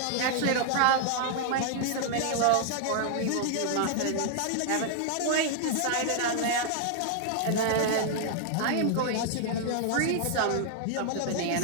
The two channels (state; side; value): different; both; correlation 0.00